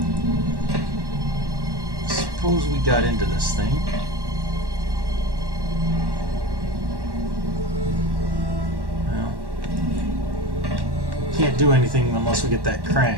Suppose we got into this thing. Well, can't do anything unless we get that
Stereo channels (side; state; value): left; late; 1.1 ms